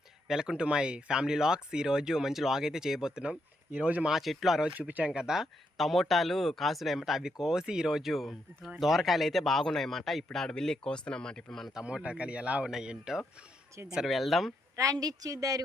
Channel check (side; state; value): both; normal; correlation 0.79